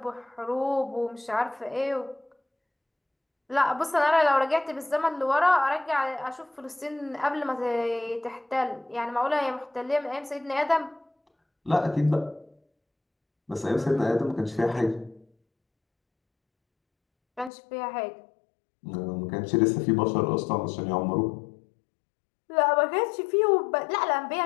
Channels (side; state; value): right; drops out; at 17.5 s